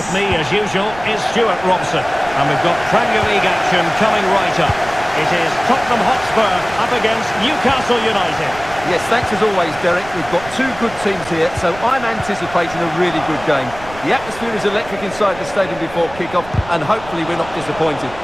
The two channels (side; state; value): right; noise; rumble, 16 dB below the sound